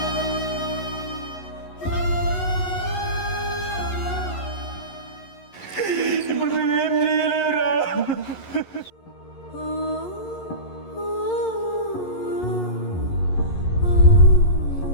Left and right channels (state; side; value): late; right; 11 ms